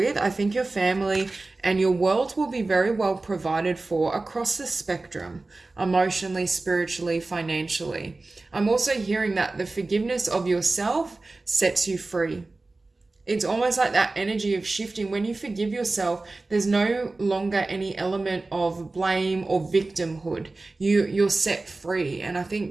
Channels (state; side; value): quieter; left; 3.3 dB